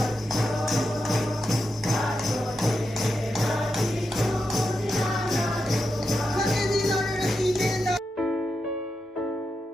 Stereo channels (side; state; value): both; normal; correlation 0.87